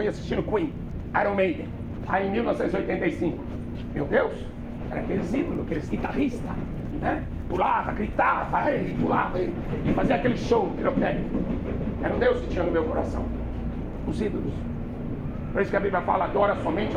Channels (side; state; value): both; identical; correlation 1.00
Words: assistindo Queen, Iron Maiden. Aí em 1985. Meu Deus, era aqueles ídolos, aqueles guitarristas, né? Pulava, gritava, pulava e fazia aquele show pirotécnico. Era um Deus que tinha no meu coração. Os ídolos. Por isso que a Bíblia fala, adora somente